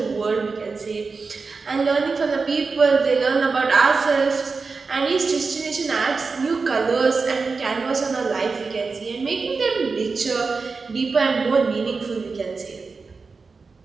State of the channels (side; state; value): left; quieter; 4.5 dB